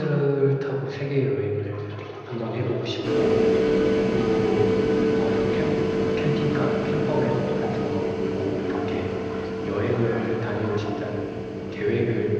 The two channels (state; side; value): identical; both; correlation 1.00